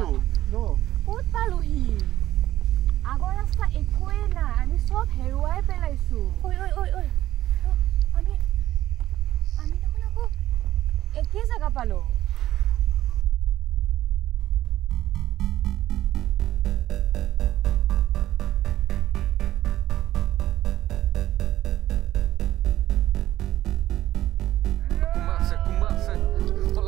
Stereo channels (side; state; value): left; quieter; 13.8 dB